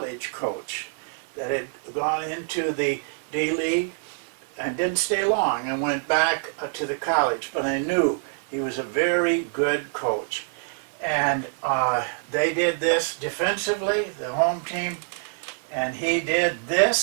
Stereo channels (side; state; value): left; silent; 56 dB below the other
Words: coach that had gone into the D-League and didn't stay long and went back to the college. But I knew he was a very good coach. And they did this defensively, the home team, and he did